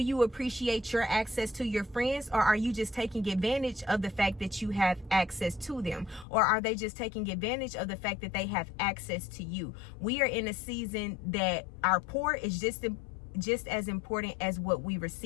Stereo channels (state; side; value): drops out; right; at 6.2 s